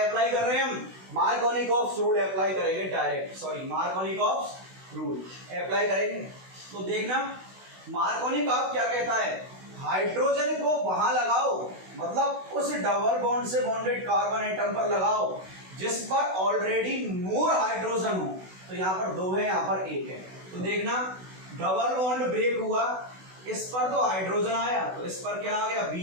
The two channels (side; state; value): left; late; 16 ms